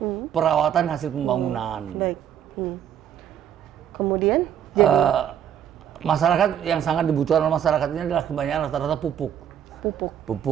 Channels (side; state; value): left; quieter; 9.6 dB